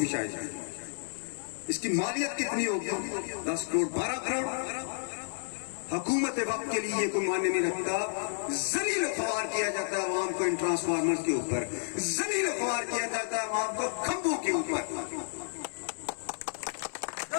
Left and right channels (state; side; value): silent; right; 57 dB below the other